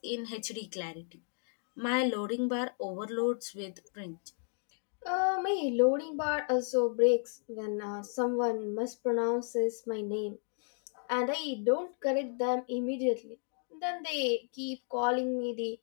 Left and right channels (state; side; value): silent; right; 55 dB below the other